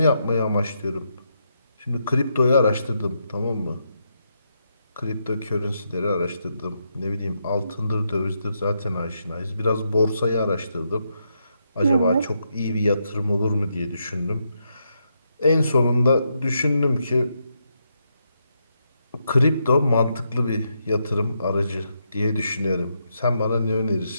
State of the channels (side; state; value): both; inverted; correlation -0.81